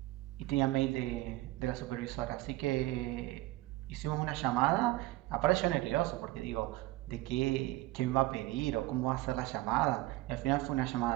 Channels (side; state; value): left; quieter; 18.3 dB